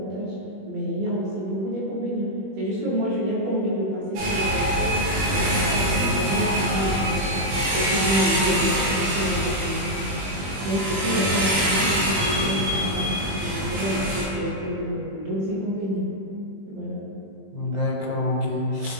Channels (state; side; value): late; left; 21 ms